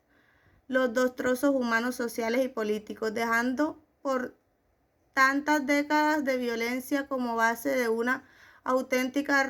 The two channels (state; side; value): identical; both; correlation 1.00